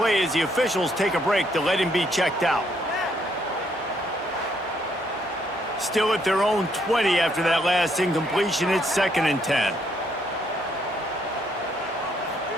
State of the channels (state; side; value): normal; both; correlation 0.71